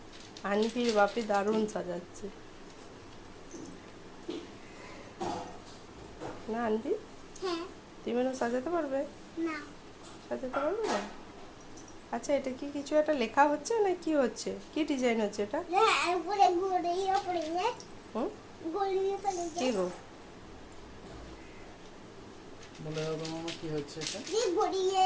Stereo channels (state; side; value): identical; both; correlation 1.00